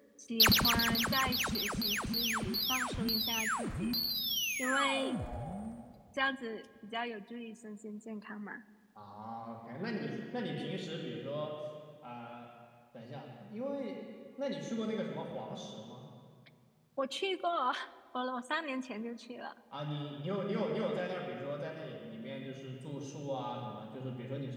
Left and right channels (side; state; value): both; identical; correlation 1.00